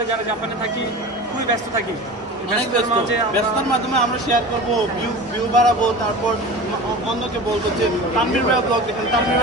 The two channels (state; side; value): normal; both; correlation 0.34